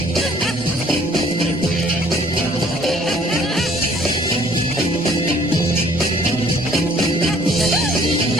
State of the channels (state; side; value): normal; both; correlation 0.58